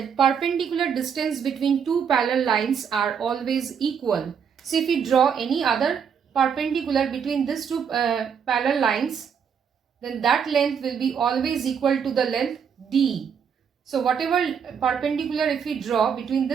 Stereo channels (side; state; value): left; quieter; 7.1 dB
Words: perpendicular distance between two parallel lines are always equal. So if we draw any other perpendicular between these two parallel lines, then that length will be always equal to the length D. So whatever perpendicular if we draw between